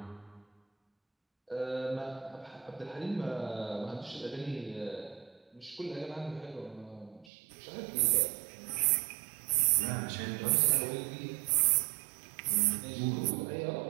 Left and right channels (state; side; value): drops out; left; at 7.3 s